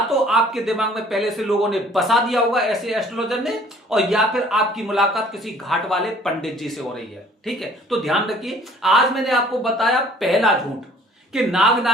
तो आपके दिमाग में पहले से लोगों ने बसा दिया होगा ऐसे एस्ट्रोलॉजर ने, और या फिर आपकी मुलाकात किसी घाट वाले पंडित जी से हो रही है। ठीक है, तो ध्यान रखिए, आज मैंने आपको बताया पहला झूठ कि नाग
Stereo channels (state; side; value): normal; both; correlation 0.54